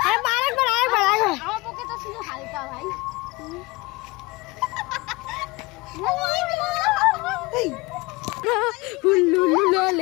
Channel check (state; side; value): quieter; right; 23.7 dB